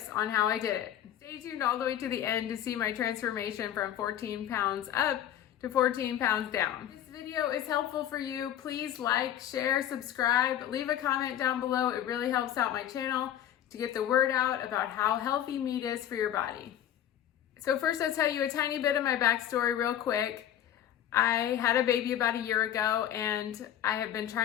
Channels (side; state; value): right; quieter; 11.0 dB